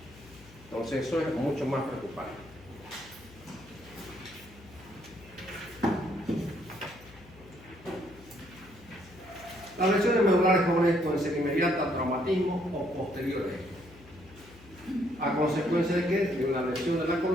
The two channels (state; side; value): noise; left; hum, 22 dB below the sound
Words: Entonces eso es mucho más preocupante. Las lesiones medulares jóvenes pueden ser inmediatas al traumatismo o posteriores. ¿A consecuencia de qué? De una lesión de la